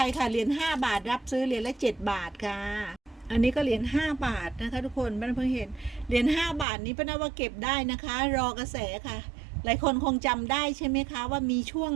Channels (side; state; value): left; drops out; at 6.7 s